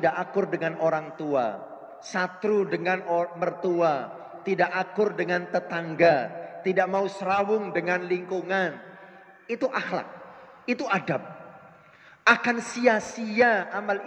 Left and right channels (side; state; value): both; identical; correlation 1.00